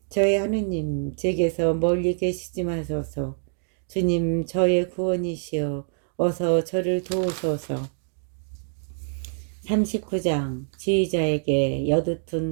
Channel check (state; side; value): silent; left; digital silence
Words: 저의 하느님, 제게서 멀리 계시지 마소서. 주님, 저의 구원이시여 어서 저를 도우소서. 39장 지휘자에게